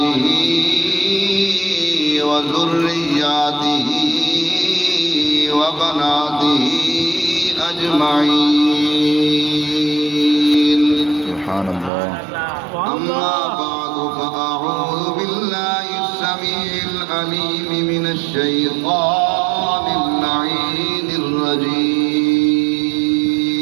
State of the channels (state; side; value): drops out; left; at 11.9 s